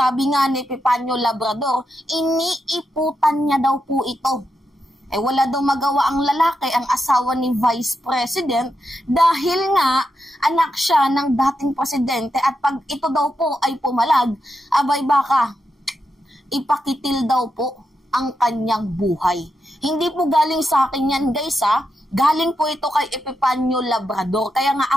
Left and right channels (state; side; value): normal; both; correlation 0.85